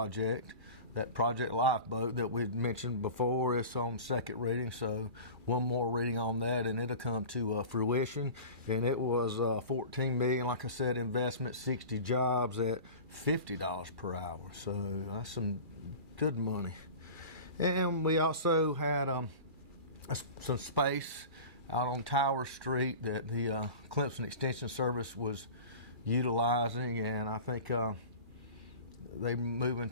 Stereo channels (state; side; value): late; left; 2.4 ms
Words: That project Lifeboat that we'd mentioned before is on second reading, so one more reading on that and it'll come to fruition. And it was $14 million, like I said, investment, 60 jobs at $50 per hour. So that's some good money. And we also had some space out on Tower Street that the Clemson Extension Service was utilizing, and I think they moving